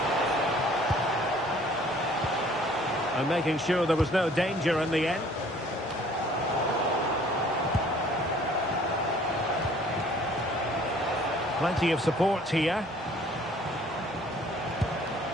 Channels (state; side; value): normal; both; correlation 0.55